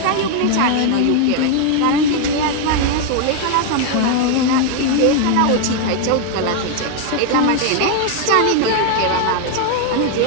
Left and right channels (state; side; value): different; both; correlation 0.00